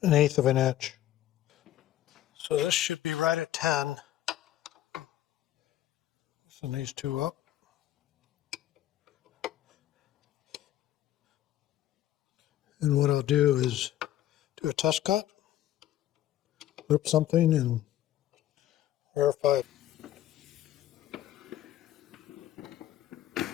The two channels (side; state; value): right; quieter; 13.0 dB